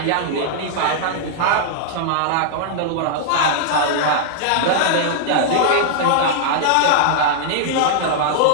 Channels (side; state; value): both; different; correlation -0.01